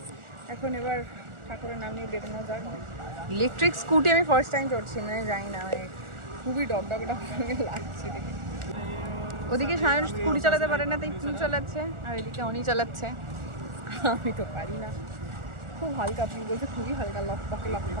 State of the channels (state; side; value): late; left; 1.4 ms